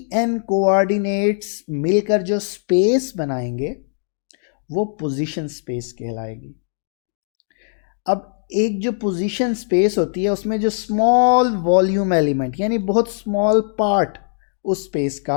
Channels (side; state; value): right; silent; digital silence